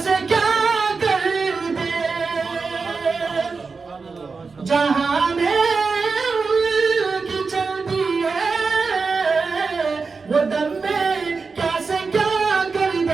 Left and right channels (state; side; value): quieter; left; 4.6 dB